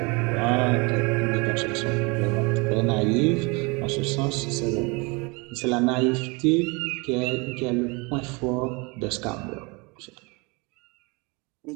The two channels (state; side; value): quieter; left; 28.6 dB